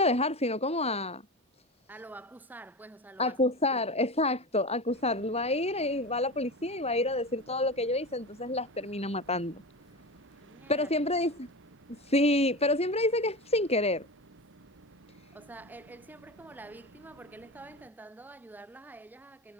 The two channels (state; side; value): normal; both; correlation 0.25